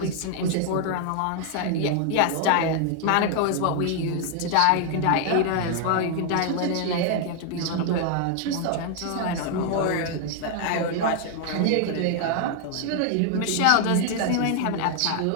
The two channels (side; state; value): both; different; correlation 0.00